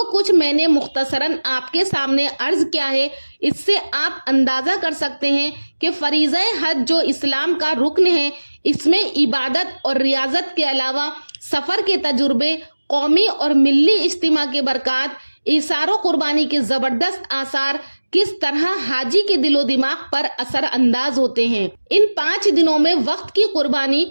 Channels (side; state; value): both; inverted; correlation -1.00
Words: कुछ मैंने मुख्तसरन आपके सामने अर्ज किया है, इससे आप अंदाज़ा कर सकते हैं कि फरीज़ा हज जो इस्लाम का रुकन है, इसमें इबादत और रियाजत के अलावा सफ़र के तजुर्बे, कौमी और मिल्ली इज्तिमा के बरक़ात, इसारो कुर्बानी के ज़बरदस्त आसार किस तरह हाजी के दिलो दिमाग पर असर अंदाज होते हैं। इन 5 दिनों में वक्त की कुर्बानी,